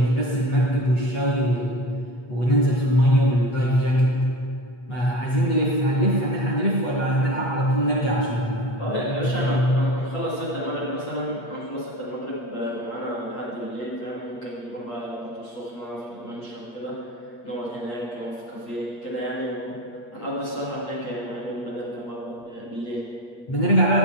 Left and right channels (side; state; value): right; late; 8.4 ms